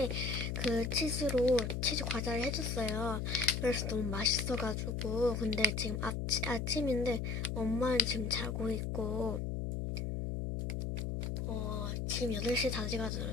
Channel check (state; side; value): noise; left; hum, 2 dB below the sound